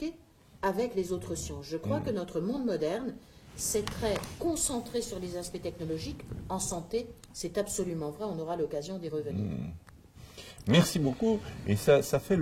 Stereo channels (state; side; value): identical; both; correlation 1.00